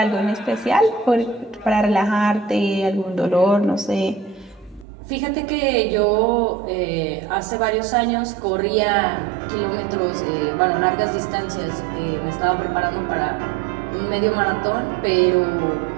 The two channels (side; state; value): left; drops out; at 4.9 s